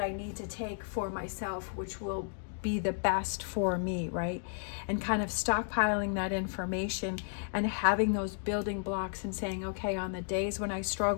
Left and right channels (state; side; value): silent; right; digital silence